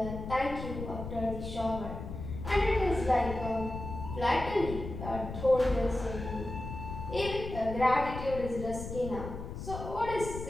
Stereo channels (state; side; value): noise; left; rumble, 8 dB below the sound